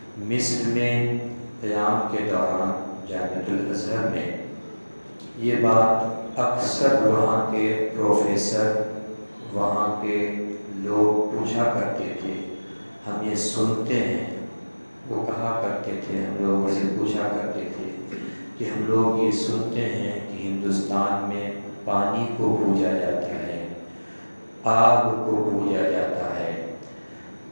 مصر میں قیام کے دوران جامعۃ الازہر میں یہ بات اکثر وہاں کے پروفیسر، وہاں کے لوگ پوچھا کرتے تھے، ہم یہ سنتے ہیں، وہ کہا کرتے تھے، ہم لوگوں سے پوچھا کرتے تھے کہ ہم لوگ یہ سنتے ہیں کہ ہندوستان میں پانی کو پوجا جاتا ہے، آگ کو پوجا جاتا ہے،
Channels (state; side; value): inverted; both; correlation -1.00